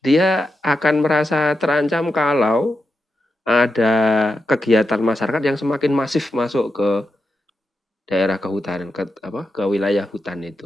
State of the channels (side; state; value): both; normal; correlation 0.88